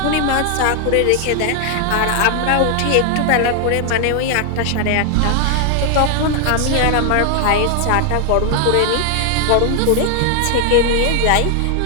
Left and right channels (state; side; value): different; both; correlation 0.00